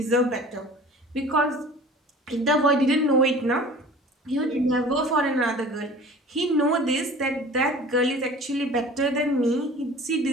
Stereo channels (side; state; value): both; normal; correlation 0.43